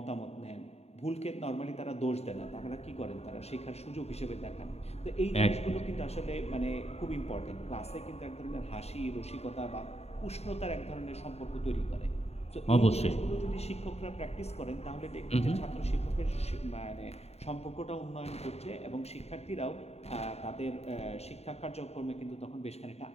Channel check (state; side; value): late; right; 0.30 ms